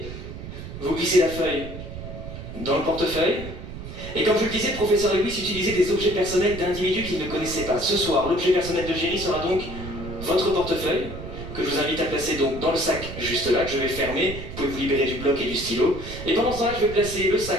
Vous glissez la feuille dans le portefeuille. Et comme je le disais, le professeur Lewis utilisait des objets personnels d'individus qu'il ne connaissait pas. Ce soir, l'objet personnel de Jerry sera donc votre portefeuille, que je vous invite à placer donc dans le sac juste là, que je vais fermer. Vous pouvez vous libérer du bloc et du stylo. Et pendant ce temps-là, je vais placer le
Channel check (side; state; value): right; noise; rumble, 10 dB below the sound